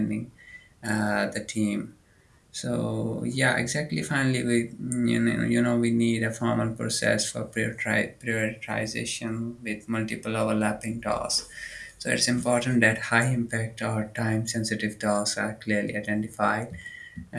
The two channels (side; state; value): both; identical; correlation 1.00